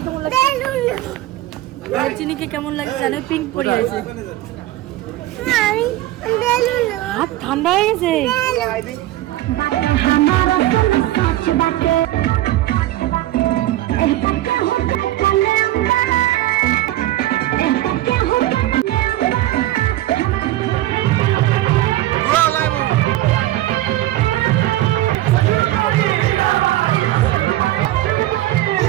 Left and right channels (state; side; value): quieter; left; 15.4 dB